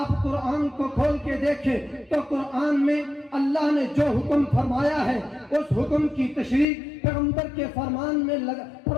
قرآن کو کھول کے دیکھیں تو قرآن میں اللہ نے جو حکم فرمایا ہے اس حکم کی تشریح پیغمبر کے فرمان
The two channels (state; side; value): drops out; right; at 6.7 s